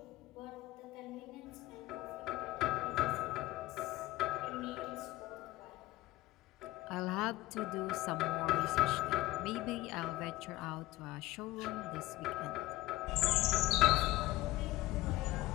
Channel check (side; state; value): right; quieter; 17.6 dB